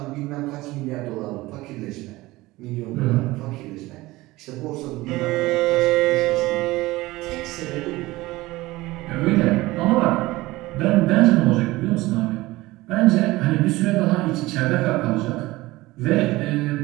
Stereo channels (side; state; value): left; quieter; 19.3 dB